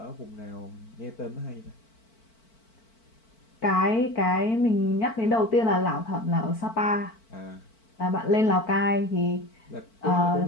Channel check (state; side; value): late; right; 4.5 ms